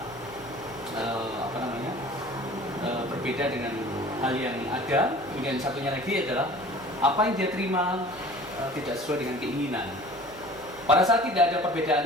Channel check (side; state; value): right; noise; hum, 23 dB below the sound